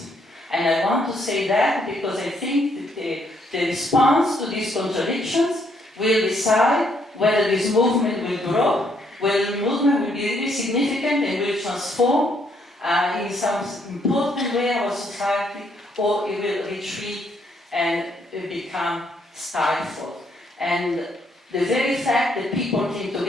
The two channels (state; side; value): normal; both; correlation 0.71